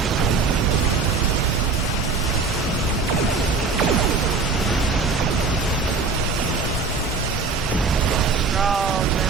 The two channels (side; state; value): left; quieter; 4.4 dB